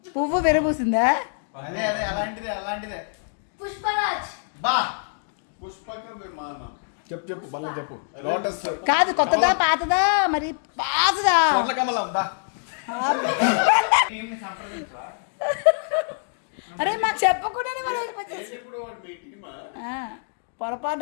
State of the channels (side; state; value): right; silent; digital silence